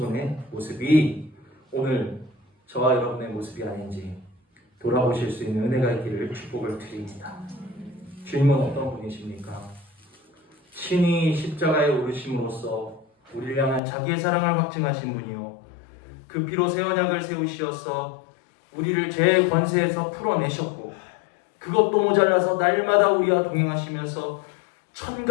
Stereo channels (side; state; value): right; drops out; at 13.8 s